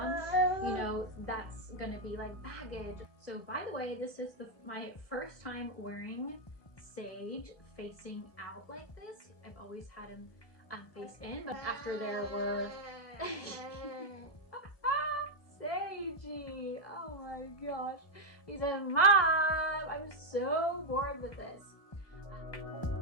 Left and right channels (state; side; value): late; right; 1.6 ms